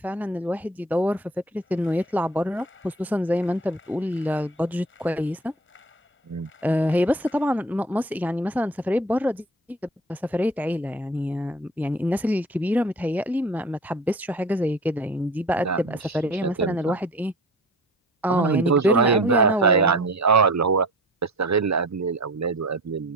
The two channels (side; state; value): both; normal; correlation 0.40